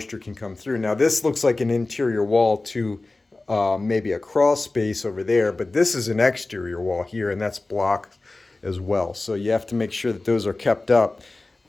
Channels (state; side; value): quieter; right; 3.2 dB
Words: can come through. Now this looks like an interior wall to maybe a crawl space over there, but this is an exterior wall here, and that's block as well. So you have to make sure that those are kept up.